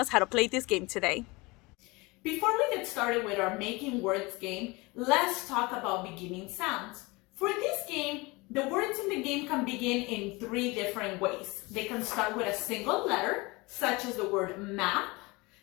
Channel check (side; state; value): right; quieter; 24.4 dB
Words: how to play this game today. Before we get started with our Making Words game, let's talk about beginning sounds. For this game, the words in the game can begin in three different ways. They can start with a single letter, such as the word map,